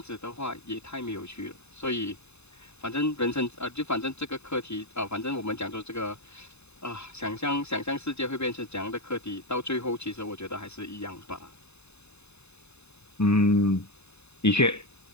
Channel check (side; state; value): right; late; 0.81 ms